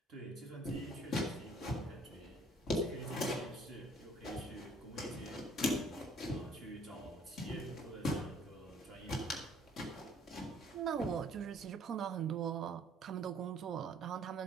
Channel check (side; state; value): both; normal; correlation 0.58